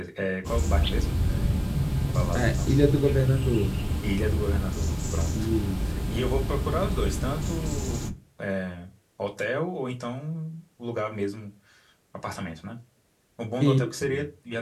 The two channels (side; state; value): both; identical; correlation 1.00